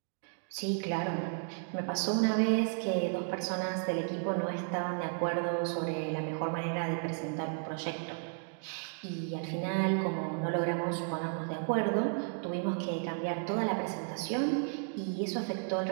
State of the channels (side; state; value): left; silent; 55 dB below the other